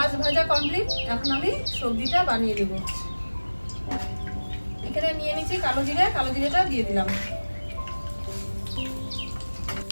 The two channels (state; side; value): inverted; both; correlation -1.00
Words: ভাজা কমপ্লিট। এখন আমি সবজিটা বানিয়ে নেব। এখানে নিয়ে নিচ্ছি কালো জিরে। কালো জিরেটা দিয়ে দিলাম।